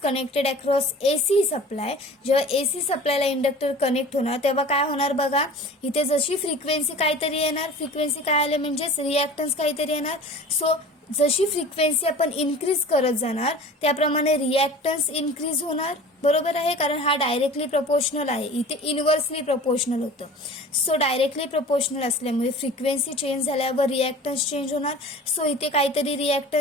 across AC supply, जेव्हा एसी सप्लायला इंडक्टर कनेक्ट होणार तेव्हा काय होणार बघा. इथे जशी फ्रिक्वेन्सी काहीतरी येणार, फ्रिक्वेन्सी काय आले म्हणजेच रिॲक्टन्स काहीतरी येणार. सो जशी फ्रिक्वेन्सी आपण इन्क्रीज करत जाणार त्याप्रमाणे रिॲक्टन्स इन्क्रीज होणार. बरोबर आहे, कारण हा डायरेक्टली प्रपोर्शनल आहे. इथे इनव्हर्सली प्रपोर्शनल होतं. सो डायरेक्टली प्रपोर्शनल असल्यामुळे फ्रिक्वेन्सी चेंज झाल्यावर रिॲक्टन्स चेंज होणार. सो इथे काहीतरी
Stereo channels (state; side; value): normal; both; correlation 0.40